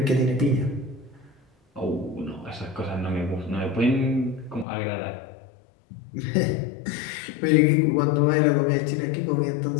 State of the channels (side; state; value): right; drops out; at 4.7 s